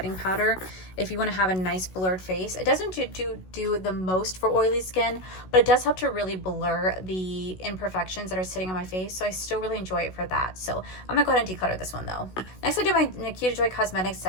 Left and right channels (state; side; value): late; right; 16 ms